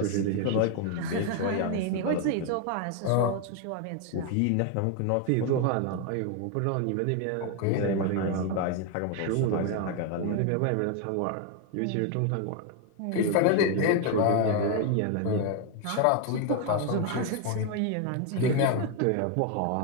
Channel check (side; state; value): both; different; correlation 0.01